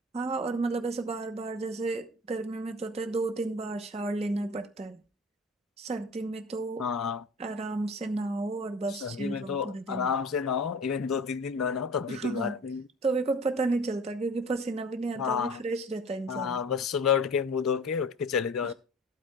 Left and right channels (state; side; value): normal; both; correlation 0.41